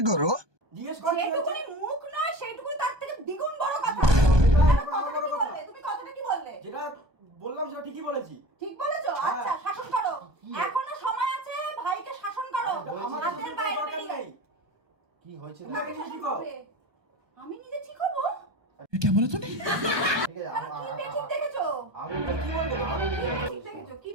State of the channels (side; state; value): left; late; 1.2 ms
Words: करो। জিজ্ঞেস কর কি হয়েছে? যেটুকুনি মুখ নয় সেইটুকুনি তার থেকে দ্বিগুণ বড় কথা। তুমি কথাটা কি বললে? যেটা বললাম সেটা ঠিকই বলেছি। ঠিক বলেছো? আচ্ছা, শাসন করো, এখনো সময় আছে, ভাইকে শাসন করো। আমার হাতের বাইরে বেরিয়ে। কি হয়েছে? তুমি আগে ঠিক হও। আমি নিজে ঠিক হবো? क्या बोला तूने? ঠিক আছে কি বেঠিক দেখেছো? আমি কি বলবো? কি দেখেছো? কি